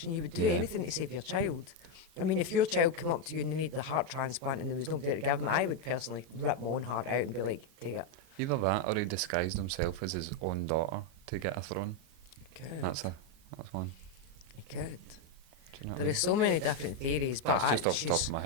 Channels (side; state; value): left; late; 38 ms